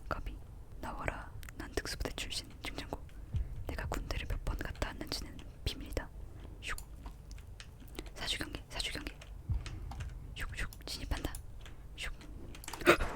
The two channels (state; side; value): identical; both; correlation 1.00